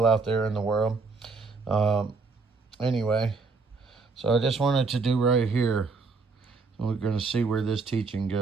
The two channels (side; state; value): left; quieter; 4.3 dB